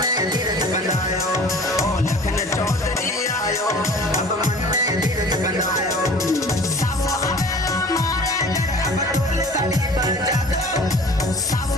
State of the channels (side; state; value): both; normal; correlation 0.45